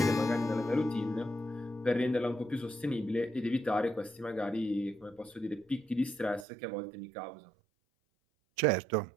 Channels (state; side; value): drops out; left; at 6.5 s